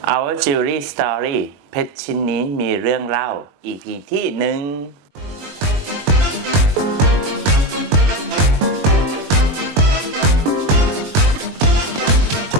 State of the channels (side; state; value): left; late; 21 ms